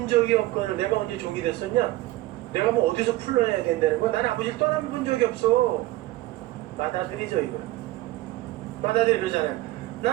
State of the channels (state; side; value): quieter; left; 17.6 dB